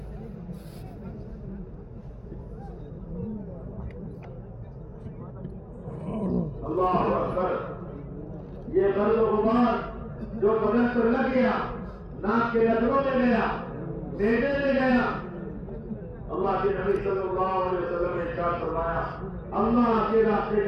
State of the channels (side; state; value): both; identical; correlation 1.00